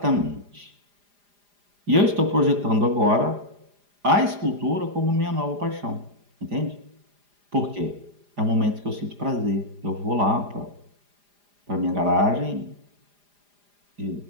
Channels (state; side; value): late; left; 4.9 ms